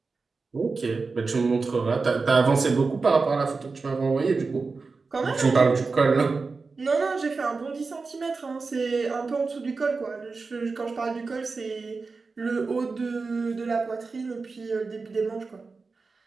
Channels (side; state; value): left; quieter; 4.3 dB